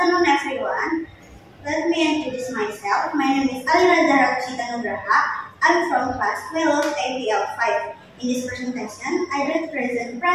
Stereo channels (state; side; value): identical; both; correlation 1.00